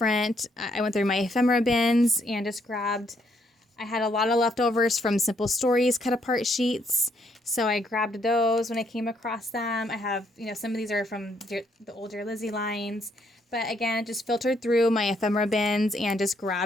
I went through my ephemera bins and just grabbed, I had a lot of leftovers from Simple Stories cut apart sheets, so I grabbed those when I came across them. I have, some of these are from the old Dear Lizzie lines, but again, just filtered through my ephemera bins and just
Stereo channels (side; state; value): both; normal; correlation 0.72